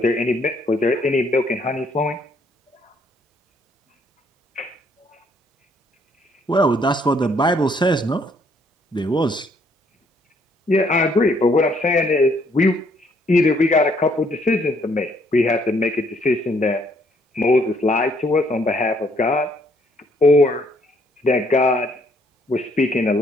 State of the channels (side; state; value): both; normal; correlation 0.67